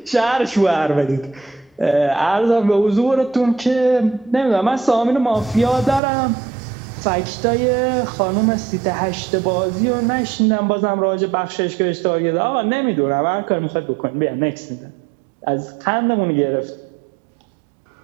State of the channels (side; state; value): left; drops out; at 6.0 s